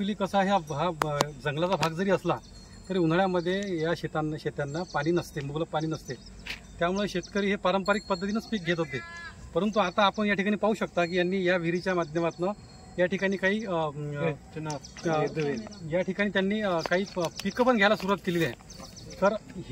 कसा आहे, हा जंगलाचा भाग जरी असला तरी उन्हाळ्यामध्ये या शेतांना पाणी नसते, मुबलक पाणी नसते। त्यामुळे शेतकरी हे पारंपरिक पद्धतीनंच पीक घेत होते, परंतु आता आपण या ठिकाणी पाहू शकता की यांनी या विहिरीच्या माध्यमातून या ठिकाणी काही त्यांनी काही पिकं पण घ्यायला सुरुवात केलेली आहे। तर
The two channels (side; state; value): both; identical; correlation 1.00